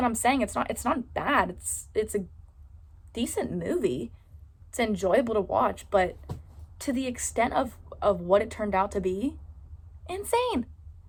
I'm saying it's not bad. It's a decent movie. It's enjoyable to watch, but to the extent of what it turned out to be, insane.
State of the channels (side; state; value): both; identical; correlation 1.00